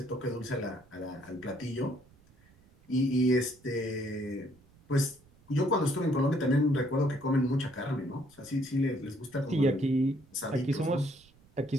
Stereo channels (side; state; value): right; noise; rumble, 28 dB below the sound